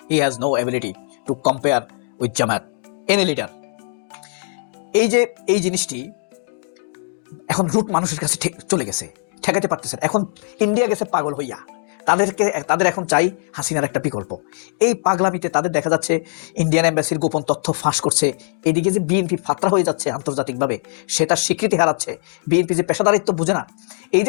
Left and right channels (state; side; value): silent; right; digital silence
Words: he has no ability to compare with Jamaat any leader. এই জিনিসটি এখন রুট মানুষের কাছে চলে গেছে, ঠেকাতে পারতেছে। এখন ইন্ডিয়া গেছে পাগল হইয়া, তাদের এখন চাই হাসিনার একটা বিকল্প। এই পাগলামিতে তাদের দেখা যাচ্ছে ইন্ডিয়ান এম্বাসির গোপন তথ্য ফাঁস করছে। এদিকে যে বিএনপি ফাতরা হয়ে যাচ্ছে আন্তর্জাতিকভাবে, সেটা স্বীকৃতি হারাচ্ছে। বিএনপি যে পেশাদারিত্ব বুঝে না, এই